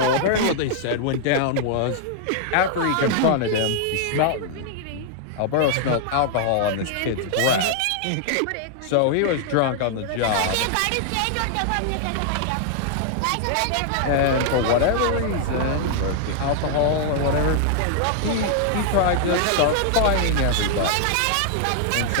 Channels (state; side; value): different; both; correlation -0.01